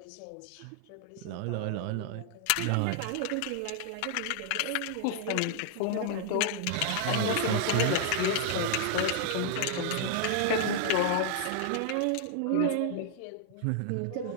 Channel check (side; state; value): both; different; correlation 0.00